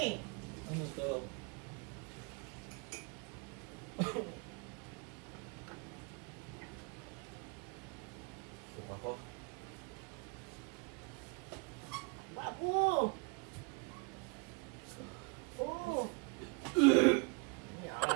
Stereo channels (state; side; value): quieter; left; 30.3 dB